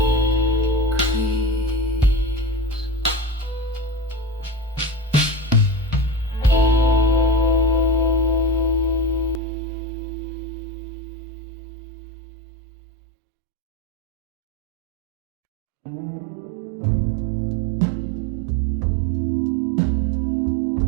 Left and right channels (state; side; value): drops out; left; at 9.4 s